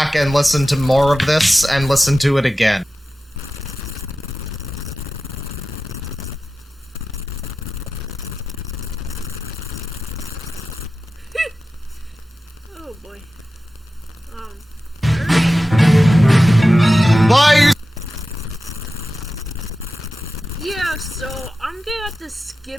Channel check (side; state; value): both; normal; correlation 0.94